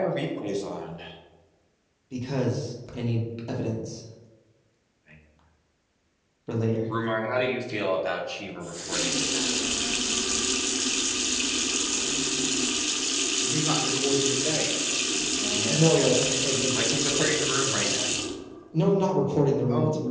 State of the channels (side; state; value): both; identical; correlation 1.00